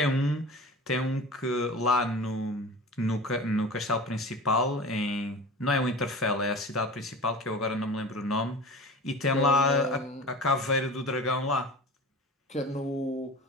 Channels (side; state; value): both; normal; correlation 0.36